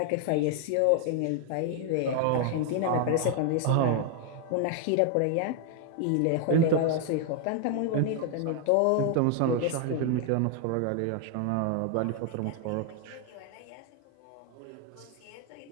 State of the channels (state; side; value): different; both; correlation 0.00